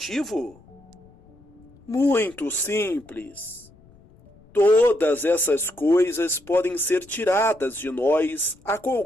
Muito simples. Todas essas coisas podem ser tiradas de nós a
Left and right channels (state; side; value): noise; left; rumble, 27 dB below the sound